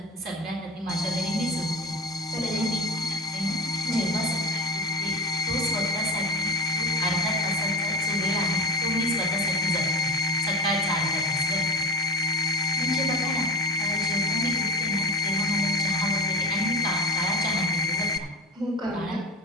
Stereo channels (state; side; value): normal; both; correlation 0.31